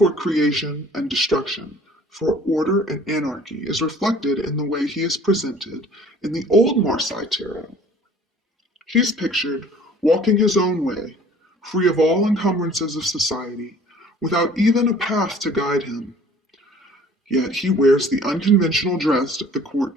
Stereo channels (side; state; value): both; normal; correlation 0.51